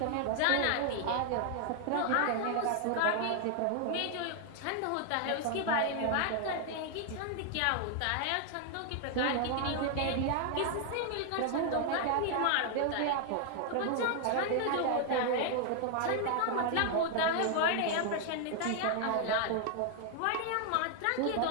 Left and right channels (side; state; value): both; different; correlation 0.00